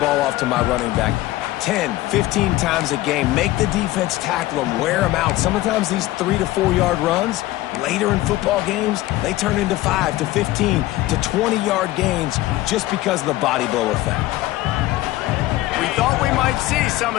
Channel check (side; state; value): right; quieter; 16.9 dB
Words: off to my running back 10, 15 times a game. Make the defense tackle them, wear them out. Sometimes these 3 to 4 yard runs, later in football games, they turn into 5 to 15 to 20 yard gains just because of the body blow effect. We thought we might see some